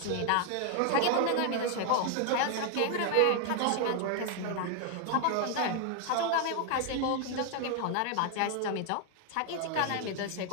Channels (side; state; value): both; different; correlation 0.00